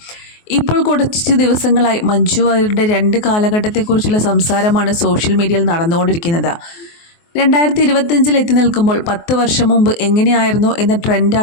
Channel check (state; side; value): late; right; 24 ms